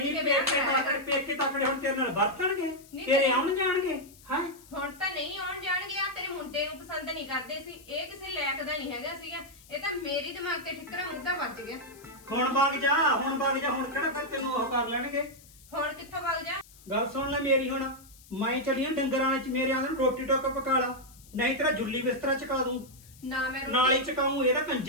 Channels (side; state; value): left; noise; hiss, 23 dB below the sound